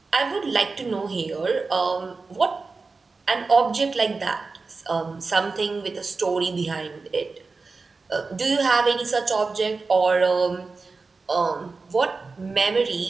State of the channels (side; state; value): left; quieter; 4.1 dB